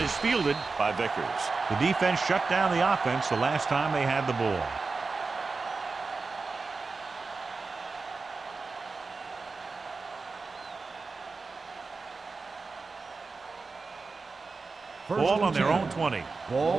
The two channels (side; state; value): left; quieter; 4.2 dB